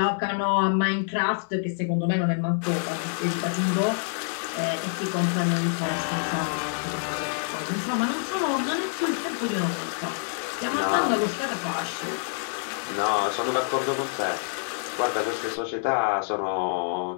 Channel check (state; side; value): silent; right; digital silence